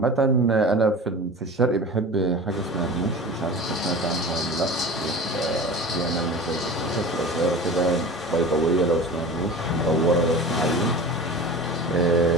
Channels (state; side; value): normal; both; correlation 0.35